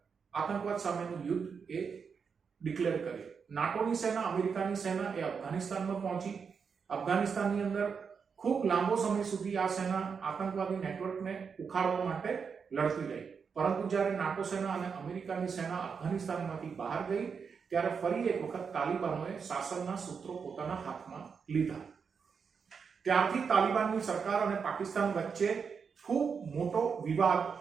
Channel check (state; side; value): quieter; left; 6.0 dB